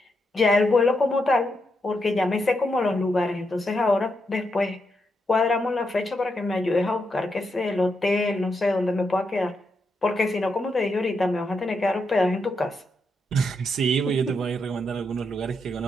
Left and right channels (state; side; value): normal; both; correlation 0.82